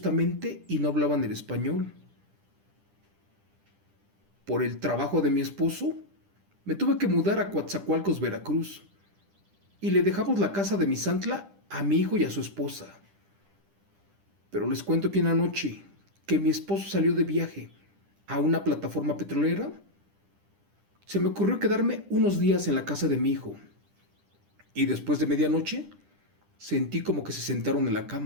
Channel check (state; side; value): late; left; 10 ms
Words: y no hablaban el español. Por el trabajo de mi esposo, me tuve que mudar a Coatzacoalcos, Veracruz, y le dejamos la casa de Misantla a mi hijo y a su esposa. Pero les cuento que una noche que mi esposo salió de viaje a una plataforma petrolera, se me ocurrió quedarme unos días en la casa de mi hijo. Y después de medianoche, sentí como que se sentaron en la